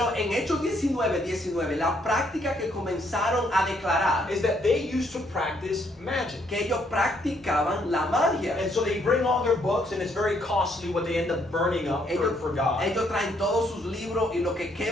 en Hechos 19, la práctica que comenzaron a declarar is that they used to practice magic. que ellos practicaban la magia. And so they bring all their books, and it's very costly what they end up burning up for God. Ellos traen todos sus libros y lo que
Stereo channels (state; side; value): normal; both; correlation 0.70